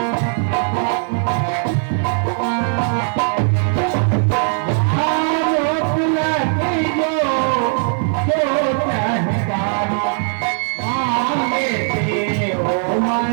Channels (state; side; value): silent; left; 57 dB below the other